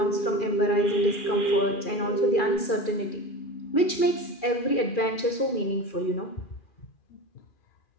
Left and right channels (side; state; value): right; late; 2.4 ms